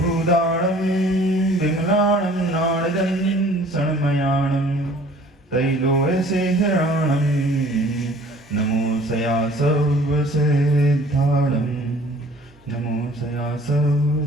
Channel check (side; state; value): both; normal; correlation 0.52